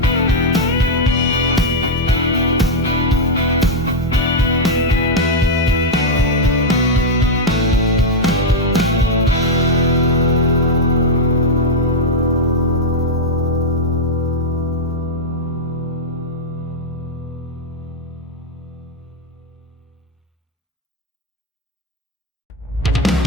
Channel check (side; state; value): both; normal; correlation 0.00